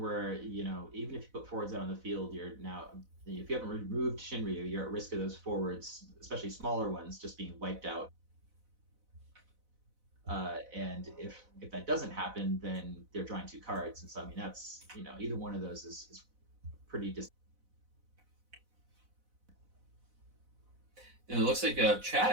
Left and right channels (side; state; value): left; late; 4.0 ms